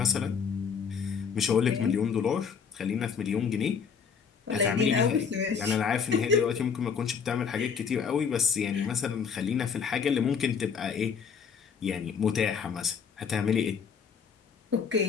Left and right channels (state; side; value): quieter; right; 6.5 dB